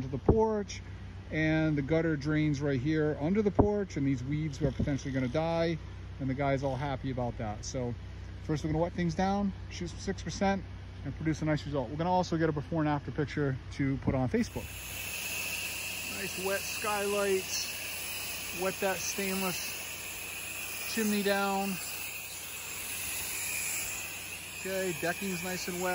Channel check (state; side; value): identical; both; correlation 1.00